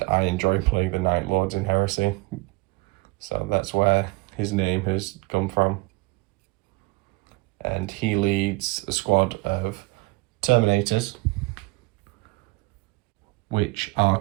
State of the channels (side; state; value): left; quieter; 23.3 dB